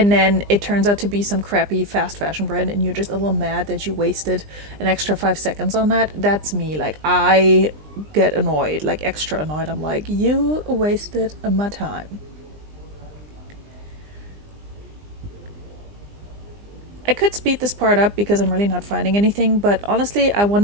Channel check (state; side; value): late; left; 20 ms